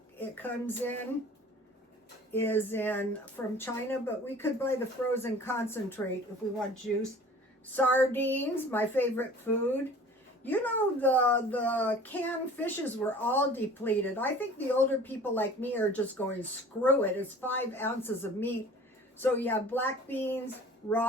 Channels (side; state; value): both; normal; correlation 0.46